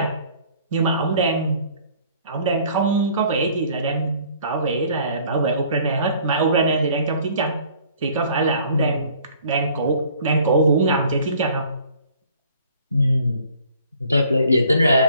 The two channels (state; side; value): inverted; both; correlation -0.56